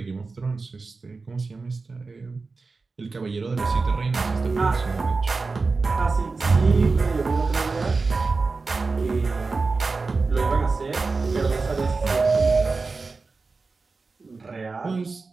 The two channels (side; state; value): left; quieter; 4.0 dB